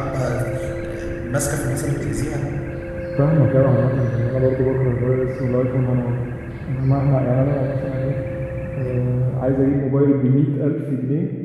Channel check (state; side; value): identical; both; correlation 1.00